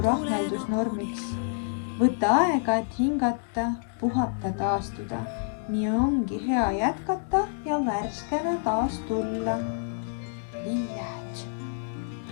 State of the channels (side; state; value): right; silent; digital silence